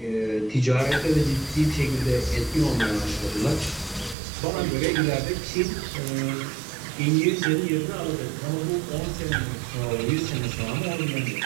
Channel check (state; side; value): drops out; left; at 4.2 s